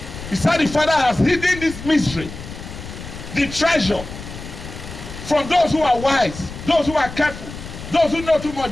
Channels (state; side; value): noise; left; rumble, 12 dB below the sound